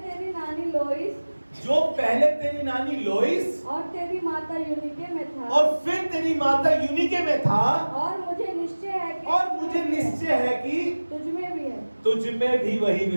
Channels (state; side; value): inverted; both; correlation -1.00